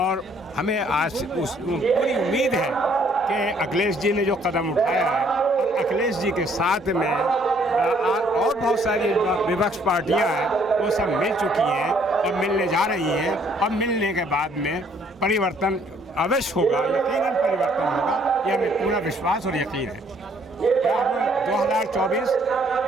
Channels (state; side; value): normal; both; correlation 0.64